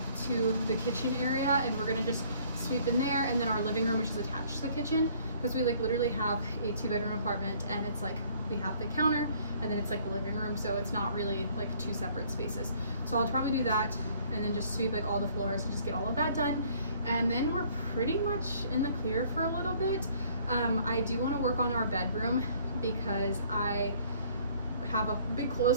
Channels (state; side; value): inverted; both; correlation -0.59